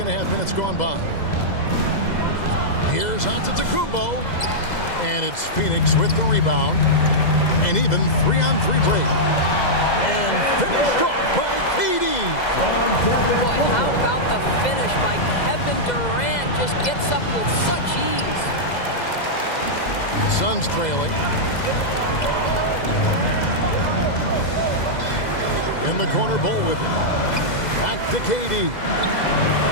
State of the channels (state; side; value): late; right; 2.0 ms